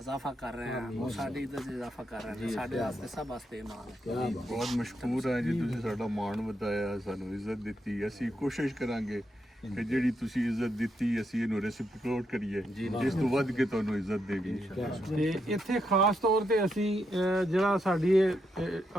ਕਰ ਰਹੇ ਹਾਂ, ਉਹ ਸਾਡੀ ਇੱਜ਼ਤ 'ਚ ਇਜ਼ਾਫਾ ਕਰ ਰਹੇ ਨੇ। ਸਾਡੇ ਵਾਸਤੇ ਸਭ ਵਾਸਤੇ ਮਾਣ ਹੈ। ਬਹੁਤ ਮਸ਼ਕੂਰ ਹਾਂ ਜੀ, ਤੁਸੀਂ ਸਾਡਾ ਮਾਣ ਵਧਾਇਆ, ਸਾਨੂੰ ਇੱਜ਼ਤ ਦਿੱਤੀ। ਅਸੀਂ ਕੋਸ਼ਿਸ਼ ਕਰਾਂਗੇ ਕਿ ਜਿਹੜੀ ਤੁਸੀਂ ਇੱਜ਼ਤ ਦਿੱਤੀ ਅਸੀਂ ਇਹਨੂੰ ਰੈਸਿਪੀਕੇਟ ਕਰੀਏ, ਇਸ ਤੋਂ ਵੱਧ ਕੇ ਤੁਹਾਨੂੰ ਇੱਜ਼ਤ ਦੇਗੀ। ਤੇ ਇੱਥੇ ਖਾਸ ਤੌਰ ਤੇ ਅਸੀਂ ਜਿਹੜਾ ਸਾਡੀ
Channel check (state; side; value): normal; both; correlation 0.81